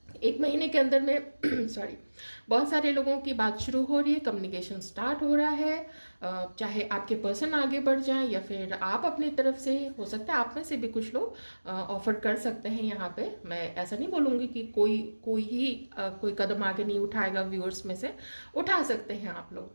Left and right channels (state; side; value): inverted; both; correlation -1.00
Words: 1 महीने के अंदर में सॉरी, बहुत सारे लोगों की बात शुरू हो रही है, कम्युनिकेशन स्टार्ट हो रहा है, चाहे आपके पर्सन आगे बढ़ जाएं या फिर आप अपनी तरफ से, हो सकता है आप में से भी कुछ लोग ऑफर कर सकते हैं। यहाँ पे मैं ऐसा नहीं बोलूँगी कि कोई कदम आगे नहीं उठाएगा, व्यूअर्स में से उठा सकते हैं आप